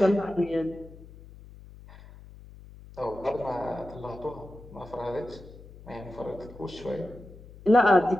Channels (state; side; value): noise; left; hum, 19 dB below the sound